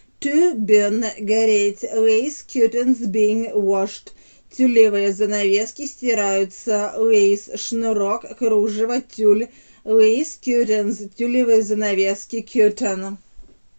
To burn, гореть. Lace curtains being washed. Тюлевые занавески стираются. Lace, шнурок, кружево, тюль. Lace curtains, тюлевые занавески. Curtain.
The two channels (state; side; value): inverted; both; correlation -1.00